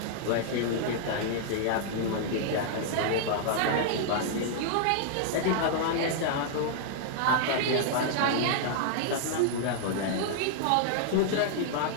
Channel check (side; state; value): both; different; correlation -0.01